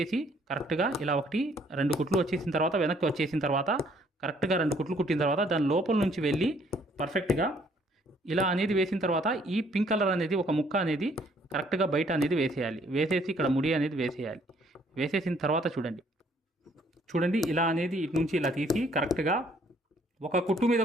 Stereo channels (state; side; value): normal; both; correlation 0.63